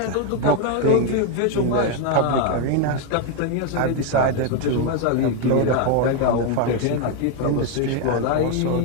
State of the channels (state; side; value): different; both; correlation 0.01